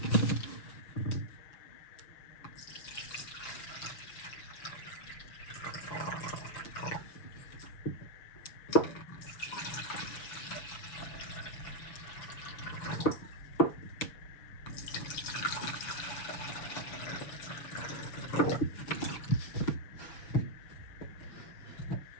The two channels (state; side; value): late; right; 6.8 ms